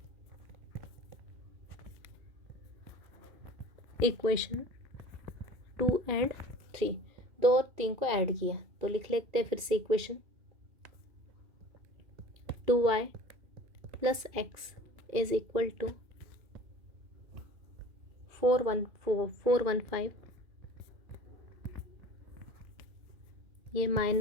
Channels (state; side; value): late; left; 2.4 ms